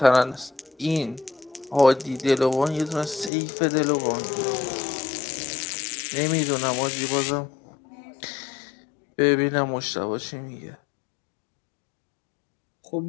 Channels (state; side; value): drops out; right; at 3.3 s